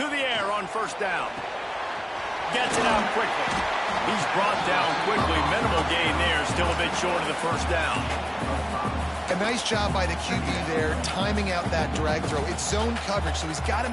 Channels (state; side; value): identical; both; correlation 1.00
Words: the air on first down. Gets it out quickly. He's brought down quickly. Minimal gain there. Still a bit short of the first down. A nice job by the QB there, timing out that drag throw. It's zone coverage, so he's got to